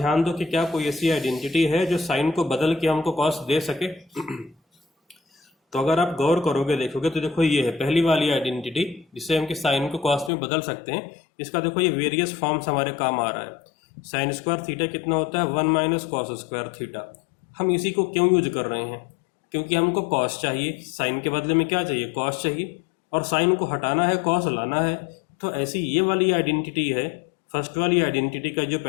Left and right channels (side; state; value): right; drops out; at 10.3 s